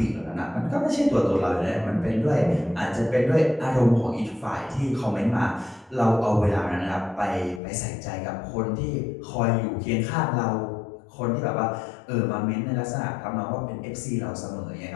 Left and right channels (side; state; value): right; drops out; at 7.6 s